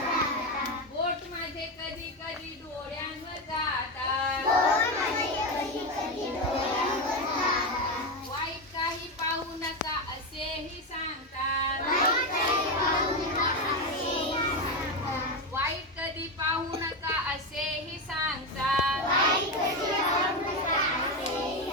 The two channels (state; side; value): normal; both; correlation 0.13